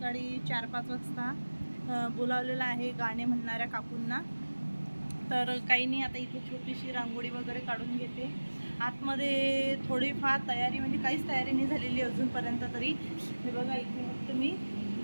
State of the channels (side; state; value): both; inverted; correlation -1.00